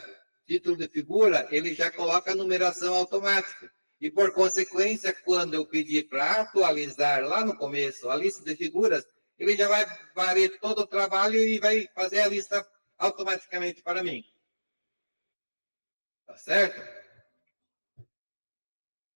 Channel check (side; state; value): both; inverted; correlation -1.00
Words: título de figura, ele já coloca a numeração automática. E, por consequência, quando eu pedir para atualizar lá no começo a lista de figuras, ele já vai varrer todo o trabalho e vai fazer a lista automaticamente para mim. Tá certo?